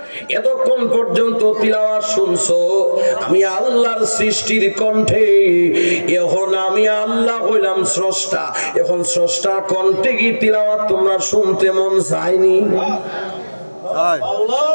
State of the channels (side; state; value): both; inverted; correlation -1.00